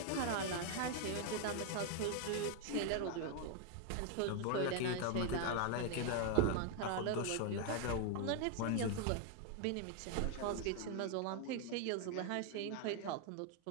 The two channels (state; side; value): different; both; correlation 0.00